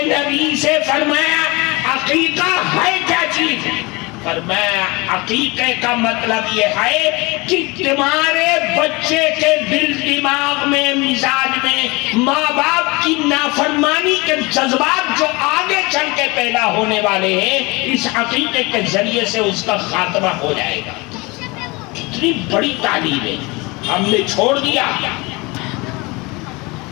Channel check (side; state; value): right; quieter; 25.4 dB